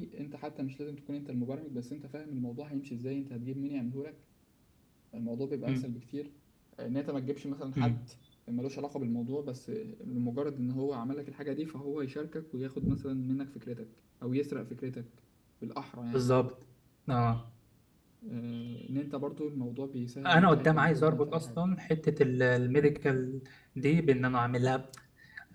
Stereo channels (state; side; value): identical; both; correlation 1.00